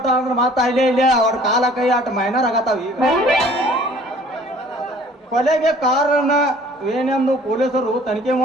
ಅಂದ್ರೆ ಮಾತಾ ಇಲ್ಲೇ ಅವ್ರ ಕಾಲ ಕೈ ಆಟ ಮೈನರ್ ಆಗತ್ತಾವ. ಈಗ ಕೊಲೆಗೆ ಕಾರಣ ಏನೆಂದು ಪೊಲೀಸರು ತನಿಖೆ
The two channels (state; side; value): normal; both; correlation 0.53